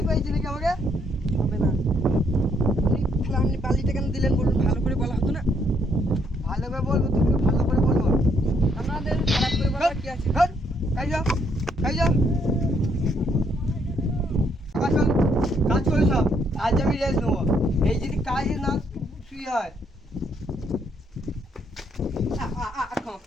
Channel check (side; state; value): both; normal; correlation 0.71